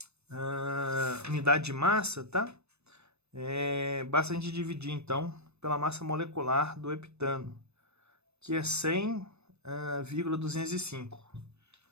unidade de massa, tá? Basta a gente dividir, então, pela massa molecular do heptano, que é 100,205.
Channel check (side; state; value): left; late; 0.80 ms